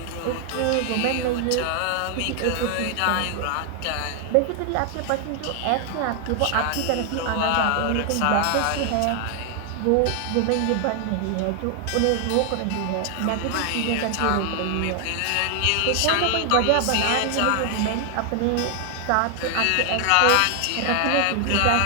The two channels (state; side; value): different; both; correlation 0.00